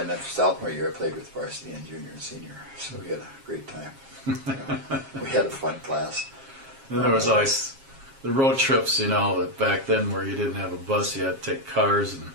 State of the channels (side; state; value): left; late; 7.4 ms